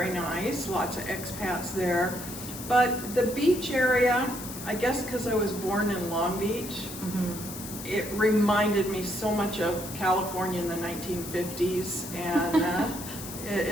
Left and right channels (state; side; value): noise; left; hiss, 11 dB below the sound